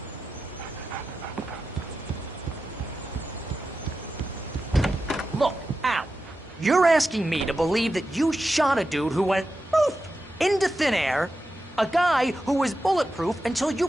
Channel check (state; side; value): normal; both; correlation 0.91